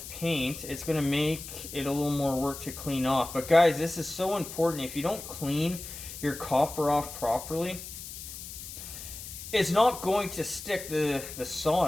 paint, it's going to make it a little more work to clean off. But guys, this is so important. If you don't clean your copper off properly, it's not going to stick the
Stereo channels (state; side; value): noise; left; hiss, 11 dB below the sound